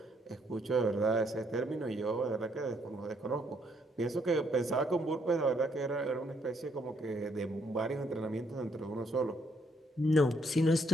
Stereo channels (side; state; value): both; normal; correlation 0.71